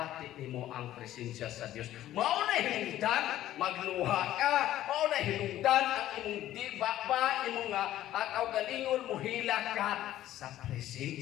nimo ang presensya sa Dios. Mao na hinungdan magluha ka, mao na hinungdan ang imong diba imong kaugalingon muhila ka sa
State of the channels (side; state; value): right; quieter; 13.4 dB